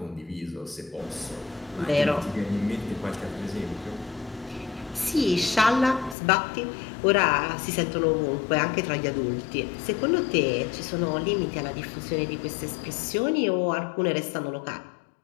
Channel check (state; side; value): drops out; right; at 6.2 s